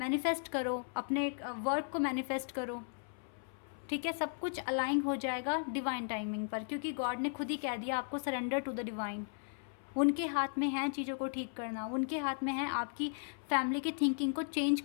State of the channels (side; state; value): right; silent; 54 dB below the other